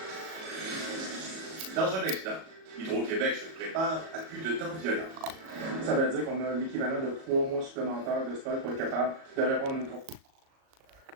Dans un instant, Hydro-Québec se prépare à plus de temps violent. Ça veut dire qu'on a l'équivalent de 3 mois supplémentaires de stock pour être capable de répondre à une course.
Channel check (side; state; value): left; late; 37 ms